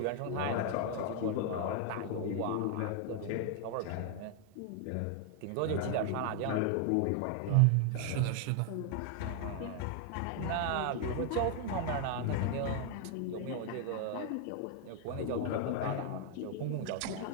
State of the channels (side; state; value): both; different; correlation 0.00